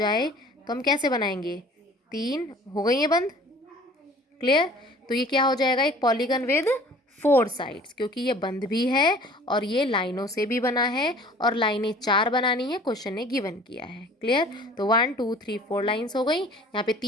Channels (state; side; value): normal; both; correlation 0.48